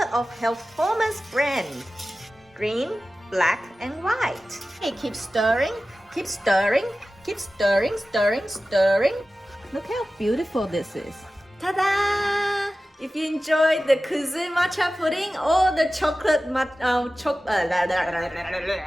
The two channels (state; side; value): normal; both; correlation 0.95